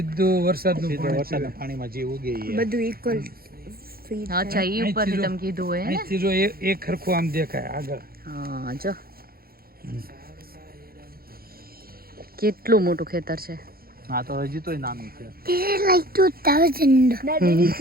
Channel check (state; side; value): late; left; 0.44 ms